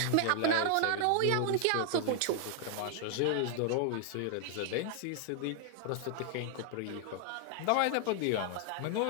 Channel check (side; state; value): both; different; correlation 0.00